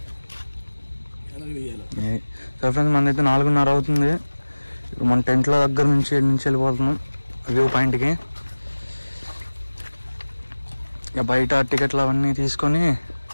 సరే ఫ్రెండ్స్, మనదైతే 4:30 అవుతుంది. ఇప్పుడు మన టెంట్ల దగ్గర నుంచి వెళ్ళిపోతున్నాం వ్యూ పాయింట్కి. ఇక బయట టికెట్లు అవన్నీ తీసుకొని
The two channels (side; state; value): both; inverted; correlation -1.00